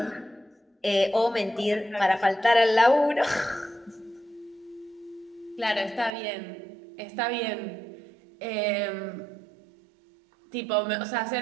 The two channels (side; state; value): left; drops out; at 6.1 s